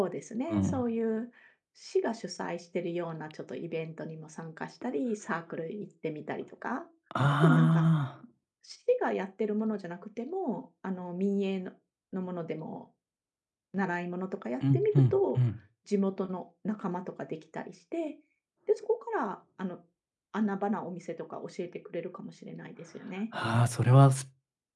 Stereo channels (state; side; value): identical; both; correlation 1.00